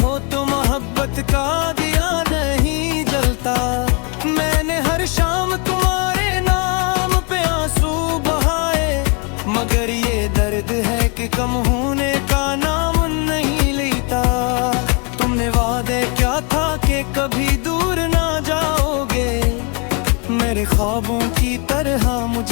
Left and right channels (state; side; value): quieter; right; 34.4 dB